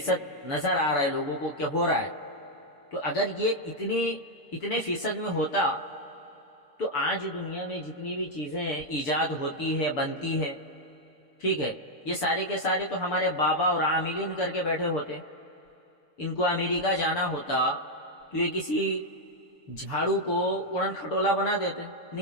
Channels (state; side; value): late; right; 6.8 ms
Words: نظر آ رہا ہے لوگوں کو کہ ہو رہا ہے، تو اگر یہ اتنے فیصد میں ہوتا تو آج دنیا میں جتنی بھی چیزیں ایجاد ہوتی ہے، بنتی ہے، ٹھیک ہے، یہ سارے کے سارے تو ہمارے بابا اور عاملین کر کے بیٹھے ہوتے۔ ان کو امریکہ جانا ہوتا تو یہ کسی جھاڑو کو اڑن کھٹولا بنا دیتے،